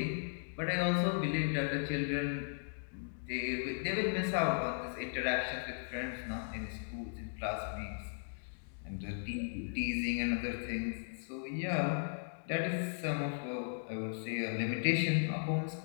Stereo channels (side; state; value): right; silent; digital silence